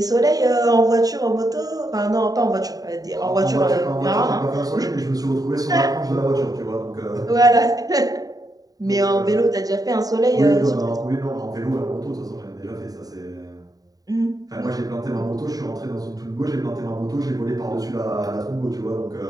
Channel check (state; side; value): late; left; 0.18 ms